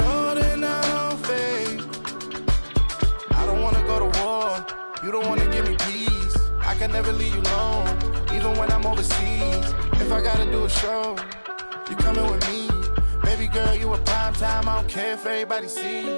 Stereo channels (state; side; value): inverted; both; correlation -1.00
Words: that I don't fade. I don't wanna go to war. You don't wanna give me peace. I can never leave you alone, even when I'm overseas. If I gotta do a show, you coming with me. Baby girl, you a prime time. I don't care if everybody see.